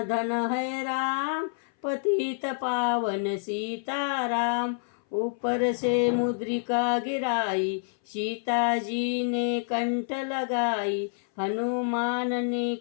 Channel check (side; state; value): right; silent; 58 dB below the other